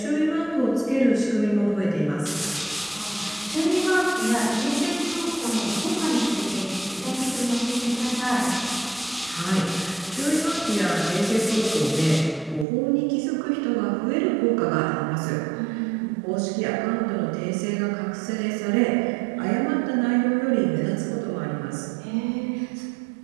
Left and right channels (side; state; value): left; drops out; at 12.7 s